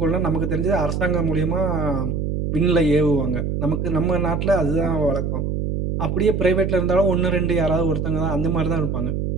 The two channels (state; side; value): noise; right; hum, 1 dB below the sound